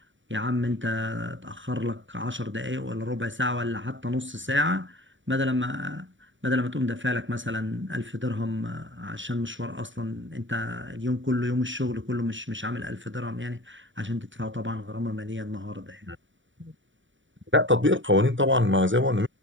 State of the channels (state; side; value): late; left; 0.55 ms